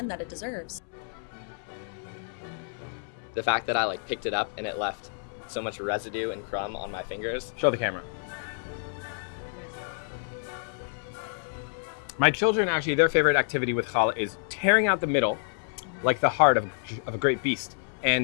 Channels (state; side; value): silent; right; 59 dB below the other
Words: that it deserves. The fact that I picked it up and it left so much residue and crumb on my fingers. Show the camera. My children, actually, their favorite activity with challah is tearing out the middle, like the heart of a great beast,